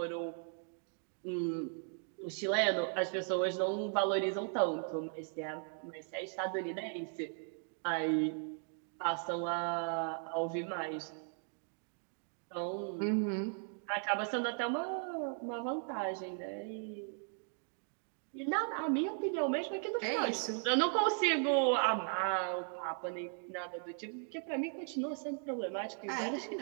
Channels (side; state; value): left; silent; 53 dB below the other